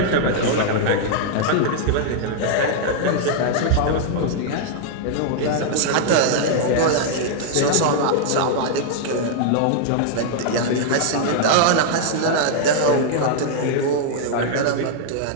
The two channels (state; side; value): different; both; correlation -0.01